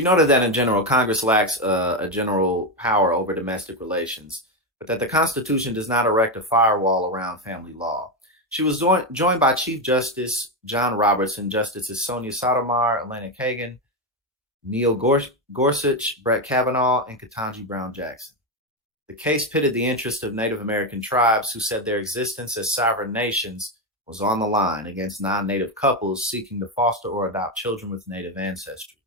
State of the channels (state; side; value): normal; both; correlation 0.09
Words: noted that in general, Congress lacks a general power over domestic relations, but that the Constitution does not erect a firewall around family law. She was joined by Chief Justice John Roberts and Justices Sonia Sotomayor, Elena Kagan, Neil Gorsuch, Brett Kavanaugh, and Ketanji Brown Jackson. The case pitted the interests of Native American tribes who said their existence as sovereign nations was on the line against non-Native couples seeking to foster or adopt children with Native ancestry.